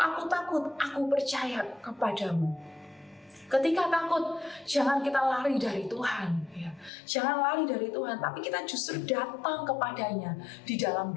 takut, aku percaya kepadamu. Ketika takut, jangan kita lari dari Tuhan. Ya. Jangan lari dari Tuhan, tapi kita justru datang kepadanya di dalam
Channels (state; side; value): drops out; right; at 6.9 s